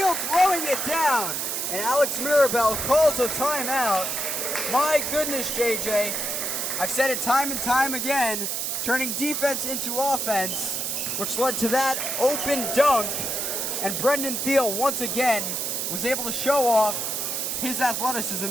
throwing it down. And Alex Mirabel calls a timeout. My goodness, JJ. I've said it time and time again, turning defense into offense, which led to that open dunk. And Brendan Thiel once again was able to show off his athleticism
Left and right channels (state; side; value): noise; right; hiss, 1 dB below the sound